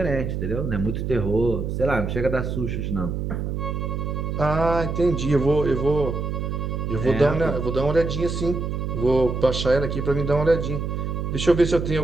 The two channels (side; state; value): right; noise; hum, 2 dB below the sound